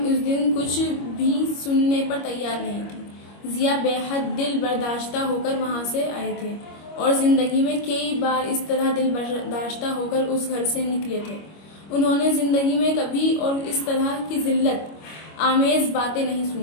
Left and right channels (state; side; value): late; right; 25 ms